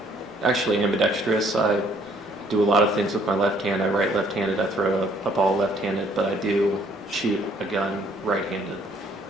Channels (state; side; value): normal; both; correlation 0.63